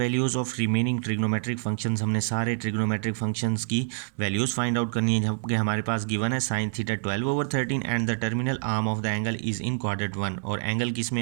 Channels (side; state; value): left; silent; 60 dB below the other